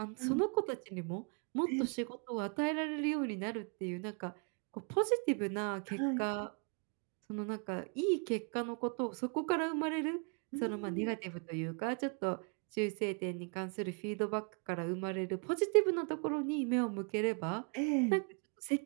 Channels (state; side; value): quieter; left; 38.7 dB